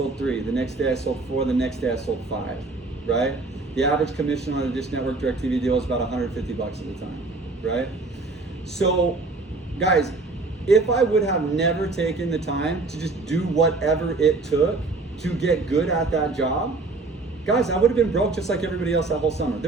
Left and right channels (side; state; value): left; quieter; 3.5 dB